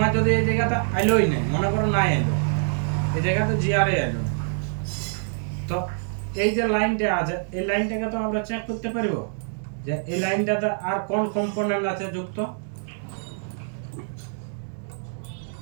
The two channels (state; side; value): silent; left; digital silence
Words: যদি এই জায়গাটা আইলোই নেই, মনে করো নাই আইলো, এই জায়গাতে জিআরএ আইলো, তো এই যে লাইনটা আছে এই লাইনটাকে তো আমরা চেক করতে পারবো যে এই লাইনটাতে আর কোন কম্পোনেন্ট আছে যুক্ত।